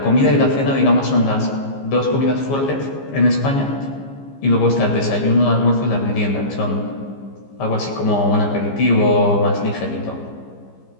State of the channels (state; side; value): late; right; 15 ms